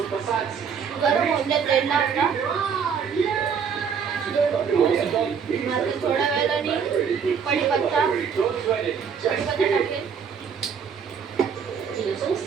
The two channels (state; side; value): quieter; left; 6.8 dB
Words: गरम होऊन द्या तेल टाकला. थोड्या वेळाने कढीपत्ता टाकेल.